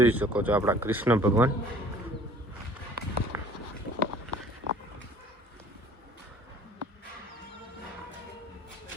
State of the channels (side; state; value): both; normal; correlation 0.51